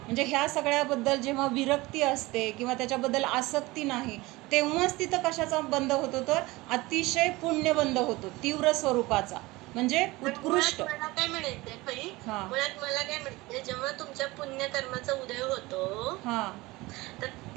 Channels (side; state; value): left; quieter; 21.1 dB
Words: ह्या सगळ्याबद्दल जेव्हा विरक्ती असते किंवा त्याच्याबद्दल आसक्ती नाही, तेव्हाच तिथं कशाचा बंद होतो तर अतिशय पुण्य बंद होतो, तीव्र स्वरूपाचा, म्हणजे उत्कृष्ट. मला काय म्हणायचंय, जेव्हा तुमच्या पुण्यकर्माचा उदय होतो तर